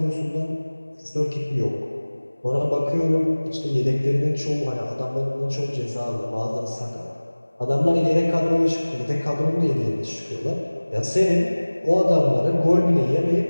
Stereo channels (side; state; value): both; inverted; correlation -1.00